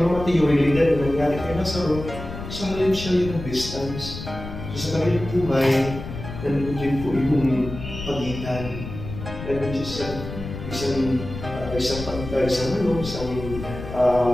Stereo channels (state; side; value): noise; left; rumble, 9 dB below the sound